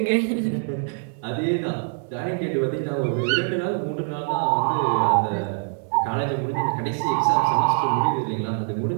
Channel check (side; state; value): left; silent; 63 dB below the other